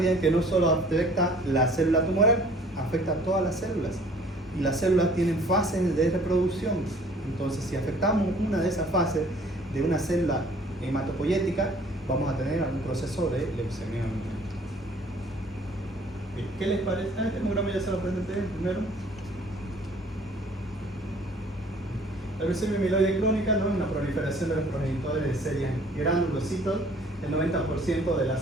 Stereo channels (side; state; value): both; normal; correlation 0.54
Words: que no solo afecta la célula tumoral, afecta a todas las células, y las células tienen fases de reproducción. Entonces, si afectamos una de esas fases de una célula hematopoyética, vamos a tener algún proceso de leucemia. ¿Qué les parece? Este hemograma ya se lo presenté primero. La leucemia mieloide crónica, ¿no? Una proliferación de los progenitores de series granulocitos. El 90% de